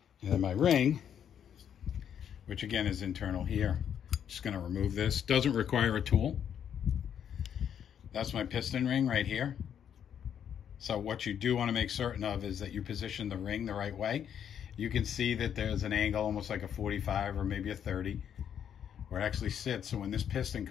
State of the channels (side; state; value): right; quieter; 8.8 dB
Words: And then my ring, which again is internal here. Just going to remove this. Doesn't require a tool. That's my piston ring right here. So what you do want to make certain of is that you position the ring the right way. You can see that there's an angle almost like a 45 or maybe a 30 where it actually sits. So when this piston